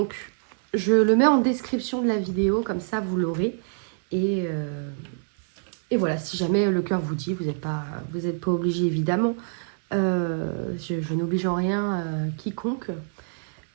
je le mets en description de la vidéo, comme ça vous l'aurez. Et voilà, si jamais le cœur vous dit, vous n'êtes pas obligé évidemment. Je n'oblige en rien quiconque.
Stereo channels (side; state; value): left; silent; 61 dB below the other